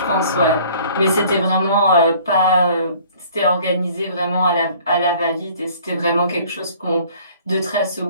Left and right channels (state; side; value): inverted; both; correlation -0.53